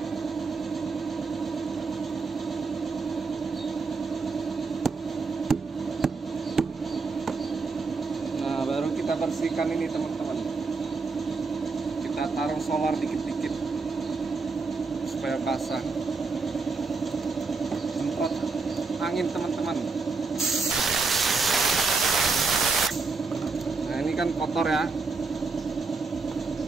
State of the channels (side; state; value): left; quieter; 4.3 dB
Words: Baru kita bersihkan ini teman-teman. Kita taruh solar dikit-dikit supaya basah. Semprot angin teman-teman. Nah, ini kan kotor ya.